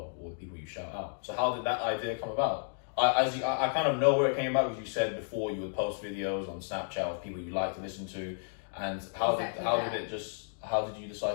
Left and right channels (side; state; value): right; silent; digital silence